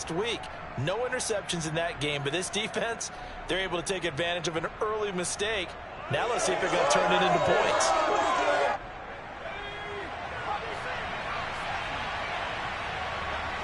week. No interceptions in that game, but this defense, they're able to take advantage of an early mistake. Now let's see if they're going to turn it into points.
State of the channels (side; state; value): both; identical; correlation 1.00